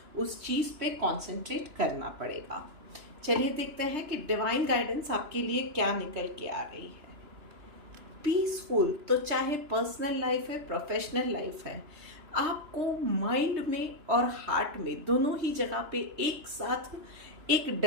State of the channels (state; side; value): late; left; 2.9 ms